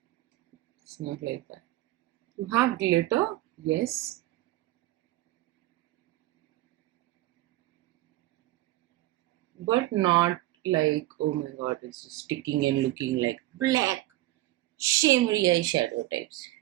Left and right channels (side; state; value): left; quieter; 16.9 dB